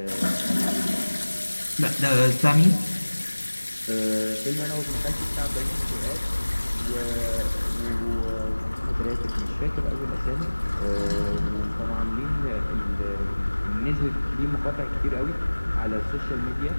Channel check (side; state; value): both; inverted; correlation -1.00